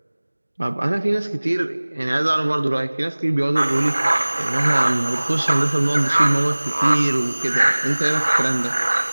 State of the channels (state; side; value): inverted; both; correlation -1.00